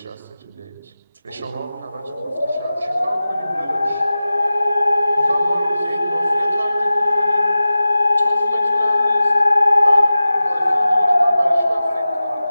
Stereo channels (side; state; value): both; inverted; correlation -0.94